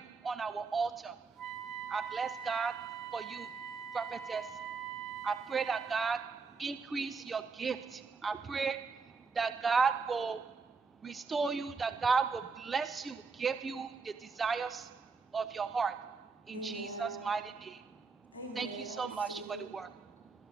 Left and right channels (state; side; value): quieter; left; 4.8 dB